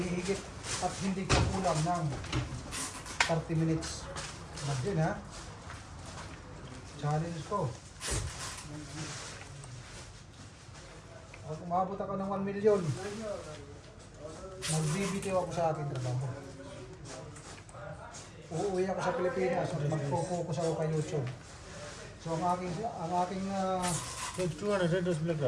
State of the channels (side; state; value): both; identical; correlation 1.00